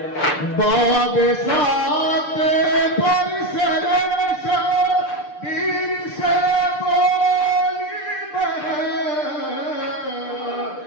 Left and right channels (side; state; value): right; late; 6.7 ms